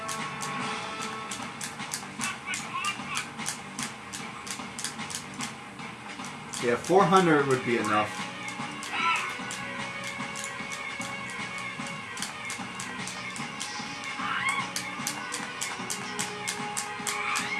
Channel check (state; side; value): identical; both; correlation 1.00